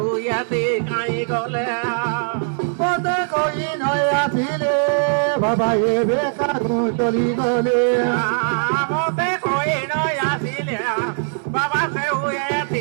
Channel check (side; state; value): left; silent; digital silence